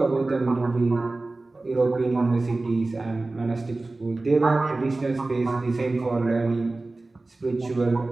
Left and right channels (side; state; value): left; quieter; 3.2 dB